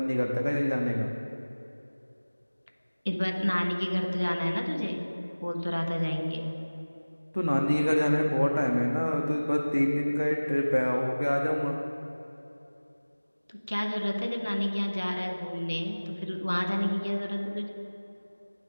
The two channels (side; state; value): both; inverted; correlation -1.00